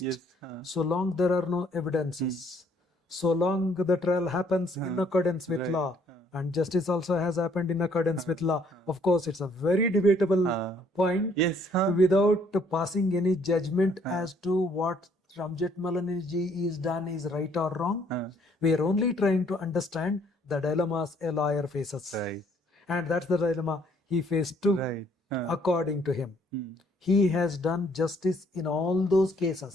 Yes. So long there are no evidences, so long the trial happens in accordance with law, and justice also has happened in accordance with law. Of course, it's a very debatable point. Yes. Without passing any judgment as to what Ramjit Malanji is done is right or wrong. We are only trying to understand the dilemmas a lawyer faces. Right. And that's the dilemma he faced too, Right. according to him. He has done justice in all those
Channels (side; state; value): both; normal; correlation 0.64